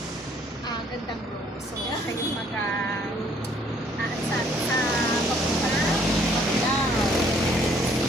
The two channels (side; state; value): both; normal; correlation 0.63